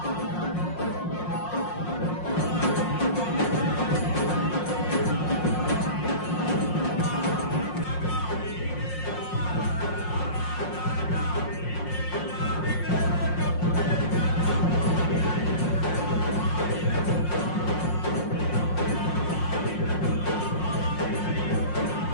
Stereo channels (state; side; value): late; right; 5.6 ms